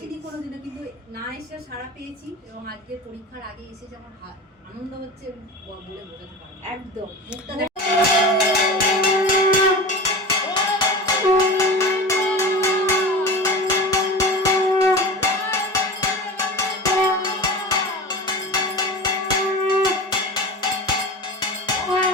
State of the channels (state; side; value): normal; both; correlation 0.31